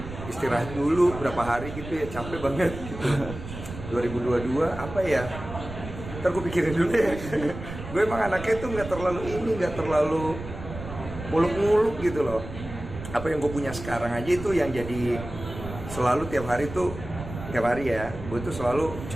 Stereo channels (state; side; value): noise; right; rumble, 10 dB below the sound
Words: istirahat dulu berapa hari gitu ya, capek banget gitu. 2022 apa ya, ntar gue pikirin dulu ya. Gue emang anaknya tuh nggak terlalu muluk-muluk gitu loh. Apa yang gue punya sekarang aja itu yang jadi selalu tiap hari ya, gue tuh selalu